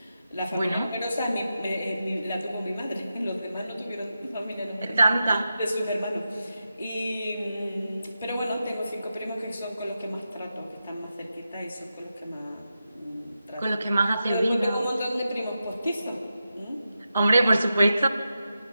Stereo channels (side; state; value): both; inverted; correlation -0.90